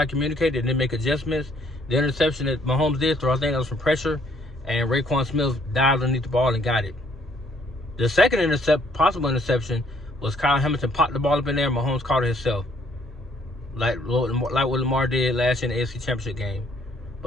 communicate. They didn't make adjustments. The interception that Mahomes did throw, I think that was from pressure, and Raekwon Smith dived underneath the ball and got it. The second possible interception was Kyle Hamilton popped the ball up in there, and Mahomes caught it himself, like what Lamar did last year in the AFC Championship game.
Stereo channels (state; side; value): normal; both; correlation 0.65